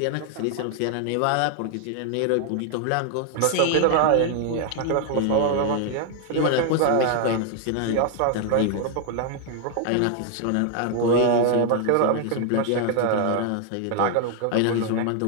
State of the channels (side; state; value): both; different; correlation 0.00